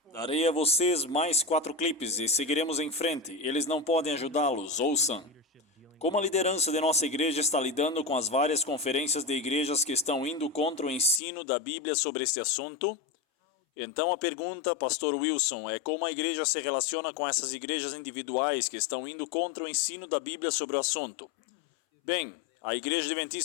Darei a vocês mais 4 clipes e seguiremos em frente. Eles não podem ajudá-los, ouçam. Como a liderança de nossa igreja está lidando com as várias conferências de igrejas que estão indo contra o ensino da Bíblia sobre este assunto? Então a pergunta, Pastor Wilson, é como a igreja se relaciona com essas igrejas individuais que estão indo contra o ensino da Bíblia sobre o assunto? Bem, a Igreja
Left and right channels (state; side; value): drops out; right; at 11.2 s